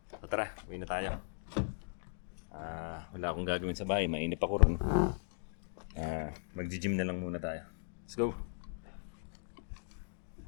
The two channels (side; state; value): right; silent; digital silence